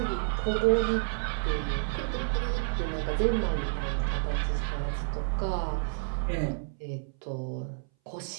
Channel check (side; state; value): left; silent; 58 dB below the other